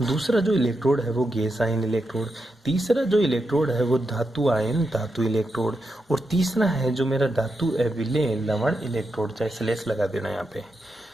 दूसरा जो इलेक्ट्रोड है वो गैस आयन इलेक्ट्रोड। तीसरा जो इलेक्ट्रोड है वो धातु आयन धातु इलेक्ट्रोड। और तीसरा है जो मेरा धातु अविलेय लवण इलेक्ट्रोड। चाहे स्लेश लगा देना यहाँ पे,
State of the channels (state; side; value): normal; both; correlation 0.86